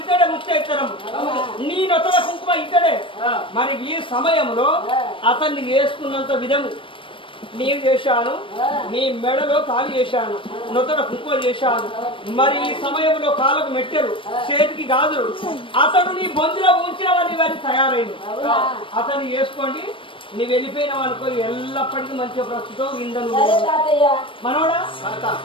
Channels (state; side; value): late; right; 0.25 ms